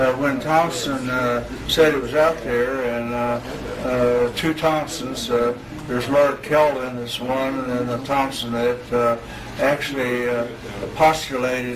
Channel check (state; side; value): identical; both; correlation 1.00